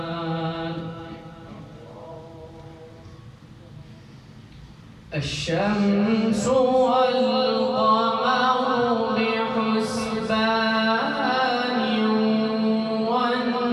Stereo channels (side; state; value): both; identical; correlation 1.00